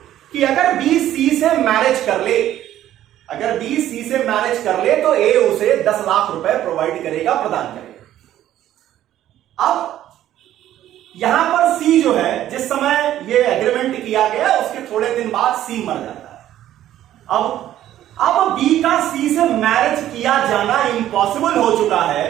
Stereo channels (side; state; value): left; quieter; 12.5 dB